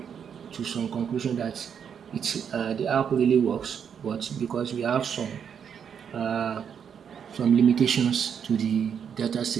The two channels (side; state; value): left; quieter; 7.6 dB